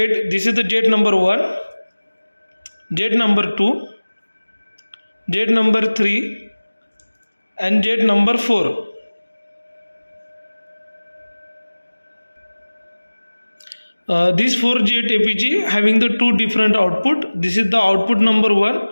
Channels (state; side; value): inverted; both; correlation -1.00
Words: this is the jet number 1, jet number 2, jet number 3 and jet number 4. These 4Jet APG having the two different output. This is the output number 1